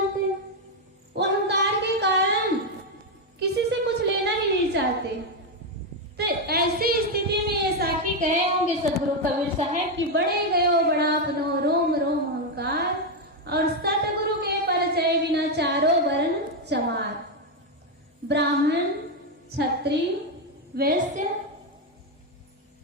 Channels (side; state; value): both; normal; correlation 0.05